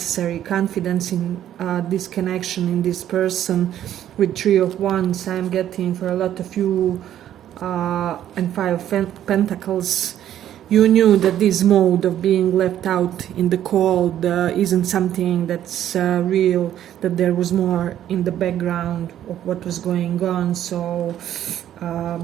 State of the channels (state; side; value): quieter; left; 11.2 dB